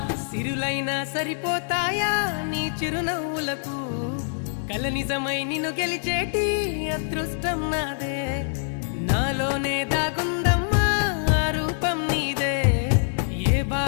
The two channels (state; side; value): silent; right; 61 dB below the other